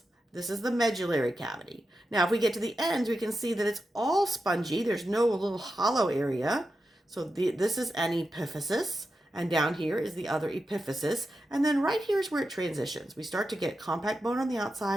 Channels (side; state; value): both; normal; correlation 0.89